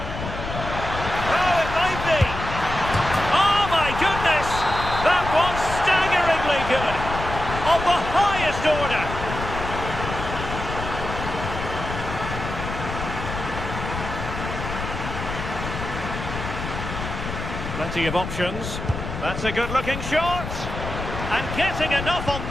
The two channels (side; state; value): left; noise; rumble, 6 dB below the sound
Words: Plenty of options. That's a good-looking shot. And getting enough on